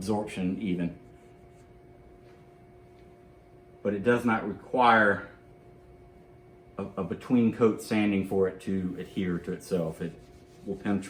even. But it does not require a between coat sanding for it to adhere to itself. It will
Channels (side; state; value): both; identical; correlation 1.00